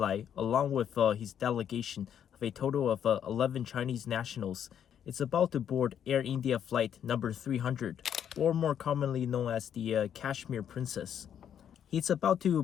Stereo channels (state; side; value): quieter; right; 9.1 dB